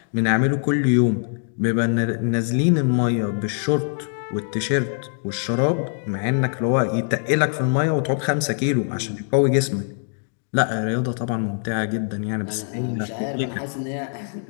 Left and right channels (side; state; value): right; silent; 64 dB below the other